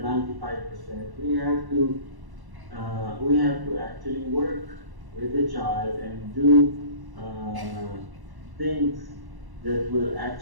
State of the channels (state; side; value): late; left; 1.1 ms